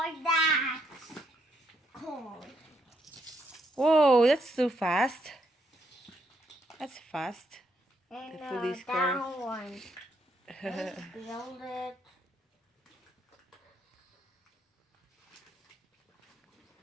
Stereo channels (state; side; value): normal; both; correlation 0.74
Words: that. Cool. Whoa, that's too fast. That's fast. And The police car. that one. Let's build it.